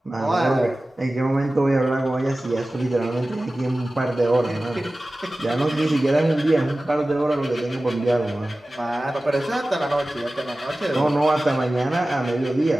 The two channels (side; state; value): both; normal; correlation 0.96